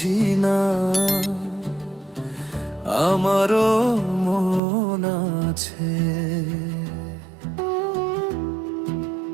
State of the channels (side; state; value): left; drops out; at 4.6 s